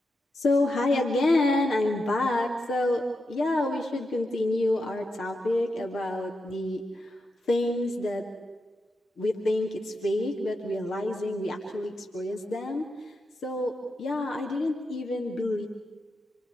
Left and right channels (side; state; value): both; normal; correlation 0.86